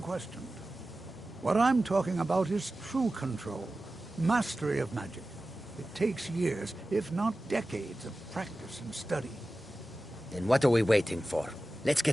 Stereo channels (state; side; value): normal; both; correlation 0.95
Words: questioned. What I'm talking about is true control, mastery of magic. It takes years, if not decades, of practice and study. Then what are we waiting for? Let's